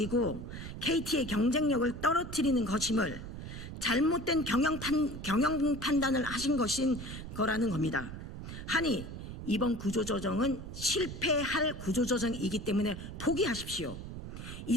KT의 경쟁력을 떨어뜨리는 것임을 잘못된 경영 판단을 하신 것인 거라는 겁니다. 하니 이번 구조조정은 실패할 구조조정이기 때문에 포기하십시오.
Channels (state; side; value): noise; right; rumble, 9 dB below the sound